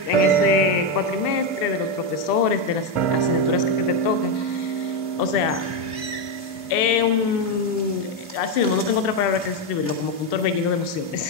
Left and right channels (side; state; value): right; late; 2.7 ms